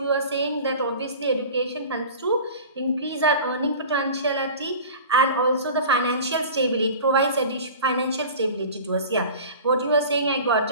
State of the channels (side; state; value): both; inverted; correlation -0.38